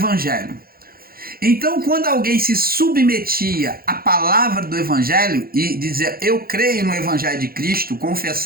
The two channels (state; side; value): late; left; 0.43 ms